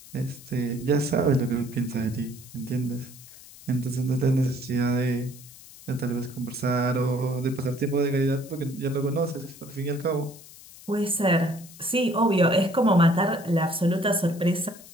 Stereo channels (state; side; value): noise; left; hiss, 19 dB below the sound